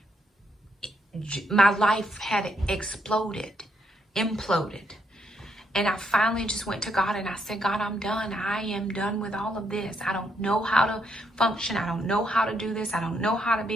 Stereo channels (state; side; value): normal; both; correlation 0.75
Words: my life had exploded, imploded. And I finally just went to God and I said, God, I'm done. I am done with all of this. I don't know how to function. I don't know how to do this. I don't know how to